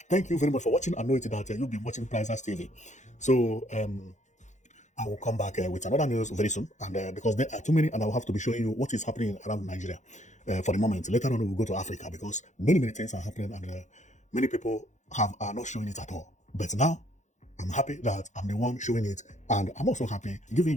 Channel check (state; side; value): late; right; 0.35 ms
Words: thank you very much for watching. I know it that you'll be watching Prizers TV. So I will come back with another news very soon. And because there are too many, and I will have to be showing you what is happening around Nigeria for the moment. Later on, we'll go to Africa because many, many things are happening, and many people are not showing it at all. But now, I'm happy that I'm the one showing it, and I'm also happy